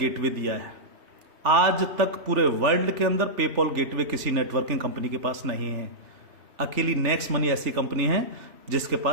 दिया है। आज तक पूरे वर्ल्ड के अंदर पेपॉल गेटवे किसी नेटवर्किंग कंपनी के पास नहीं है। अकेली नेक्स्ट मनी ऐसी कंपनी है जिसके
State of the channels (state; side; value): late; left; 3.4 ms